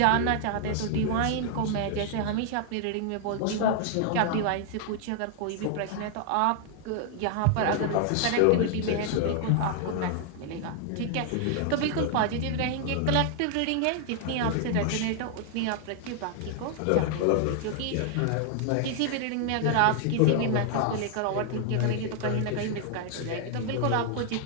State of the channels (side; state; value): both; different; correlation 0.00